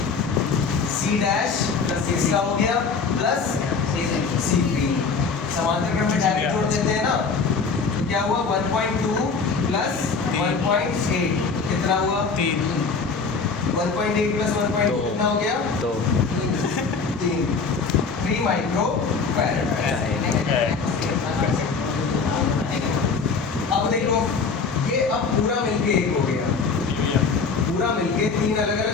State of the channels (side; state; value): right; quieter; 4.9 dB